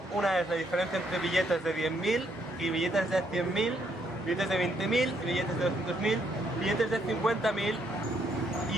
Una es la diferencia entre billetes de 10.000 y billetes de 100.000, billetes de 20.000 y billetes de 200.000, billetes de 50.000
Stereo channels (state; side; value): normal; both; correlation 0.73